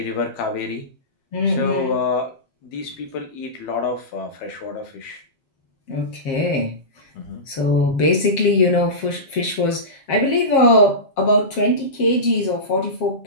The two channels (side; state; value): right; late; 7.4 ms